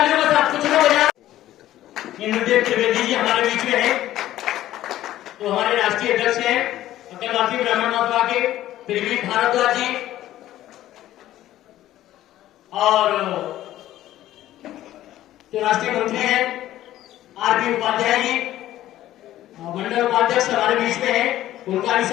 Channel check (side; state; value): right; quieter; 13.8 dB